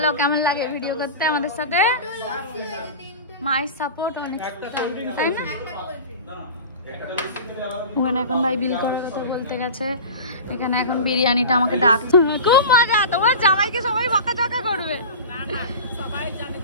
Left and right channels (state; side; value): inverted; both; correlation -0.33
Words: কেমন লাগে ভিডিও করতে আমাদের সাথে? মায়ের সাপোর্ট অনেক, তাই না? ওখানে এখন ভাই বিল করার কথা বলতে গেছে। এখানে এখন বিরিয়ানিটা আমাকে ডাকছে, খুব মজা। তোমার জামাইকে সবাই বকাঝকা করবে,